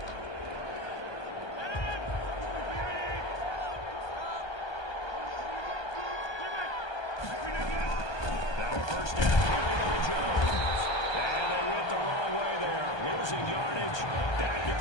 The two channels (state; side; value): late; right; 1.2 ms